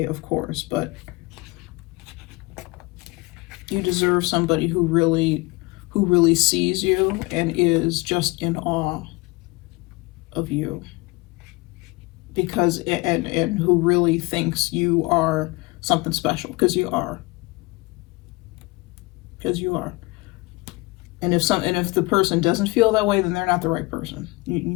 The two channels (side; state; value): right; quieter; 24.0 dB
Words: of course, but you deserve somebody who really sees you and is just in awe of you, because and who really thinks you are something special, because you are. And if the person doesn't feel that way, then they're not the right person. You